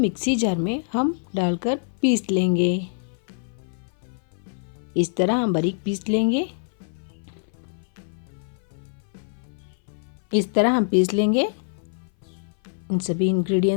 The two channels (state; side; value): silent; right; 58 dB below the other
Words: जार में हम डालकर पीस लेंगे। इस तरह हम बारीक पीस लेंगे। इस तरह हम पीस लेंगे इन सभी